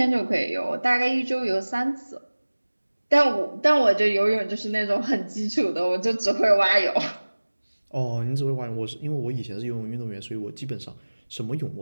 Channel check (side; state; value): both; inverted; correlation -1.00